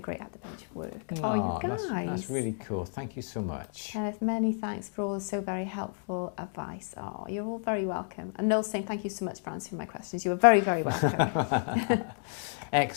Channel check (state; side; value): silent; right; 56 dB below the other